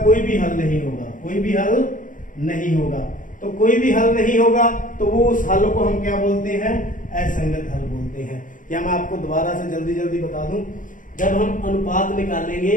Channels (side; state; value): right; late; 0.38 ms